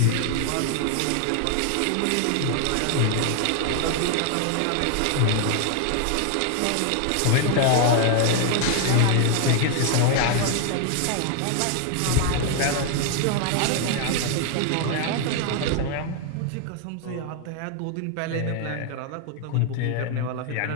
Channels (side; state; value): both; different; correlation 0.00